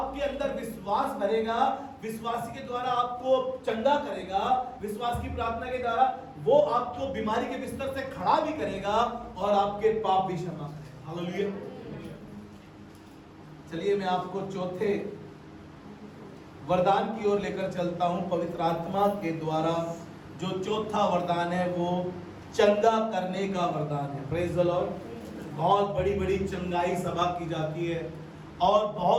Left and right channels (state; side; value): identical; both; correlation 1.00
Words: अंदर विश्वास भरेगा, विश्वासी के द्वारा आपको चंगा करेगा, विश्वास की प्रार्थना के द्वारा वो आपको बीमारी के बिस्तर से खड़ा भी करेगा और आपके पाप भी क्षमा करेगा। हालेलुया। चलिए मैं आपको चौथे वरदान की ओर लेकर चलता हूं। पवित्र आत्मा के द्वारा जो चौथा वरदान है वो चंगा करने का वरदान है। Praise the Lord. बहुत बड़ी बड़ी चंगाई सभा की जाती है और